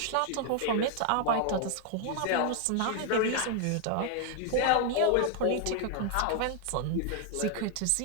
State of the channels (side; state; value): both; different; correlation 0.00